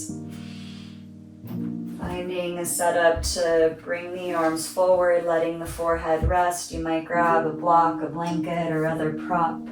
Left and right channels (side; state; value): both; identical; correlation 1.00